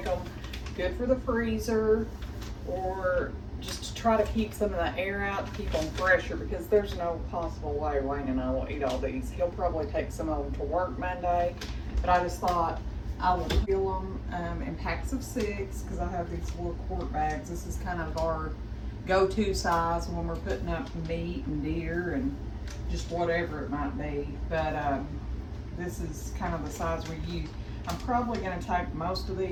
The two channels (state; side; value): identical; both; correlation 1.00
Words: them good for the freezer, or just to try to keep some of the air out to keep them fresher, because there's no possible way Wayne and I will eat all these. He'll probably take some of them to work Monday, but I just thought I will seal them in packs of 6, because I have these little quart bags. This is kind of our go-to size when we're putting up meat and deer and just whatever it might be, but this is kind of the size we use. I'm probably going to take most of